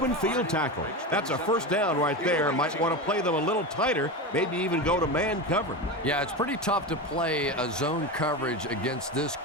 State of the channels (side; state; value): both; normal; correlation 0.21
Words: field tackle. That's a first down right there. Might want to play them a little tighter, maybe even go to man cover. Yeah, it's pretty tough to play a zone coverage against this